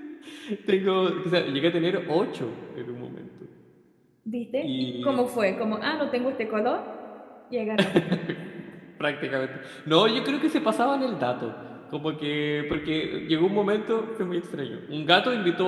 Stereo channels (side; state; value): both; identical; correlation 1.00